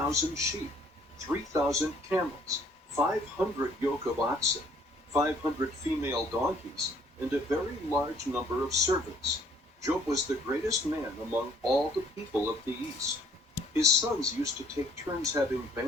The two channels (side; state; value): both; normal; correlation 0.60